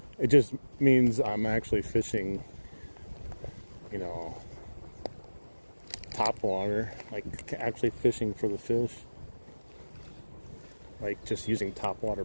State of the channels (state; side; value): inverted; both; correlation -1.00